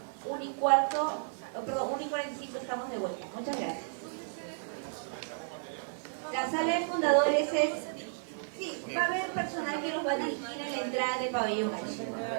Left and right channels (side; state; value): left; silent; digital silence